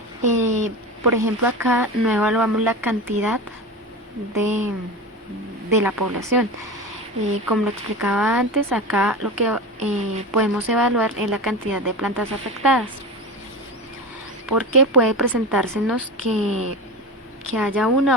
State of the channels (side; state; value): both; normal; correlation 0.26